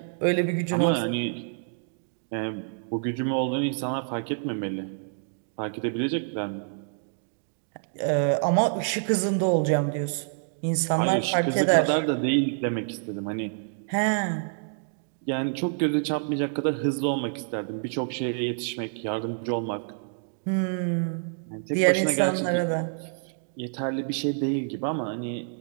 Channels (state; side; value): silent; left; digital silence